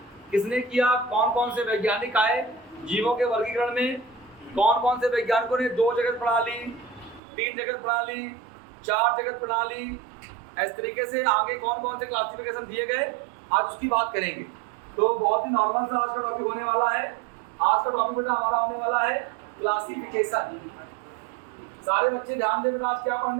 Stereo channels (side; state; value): left; drops out; at 7.2 s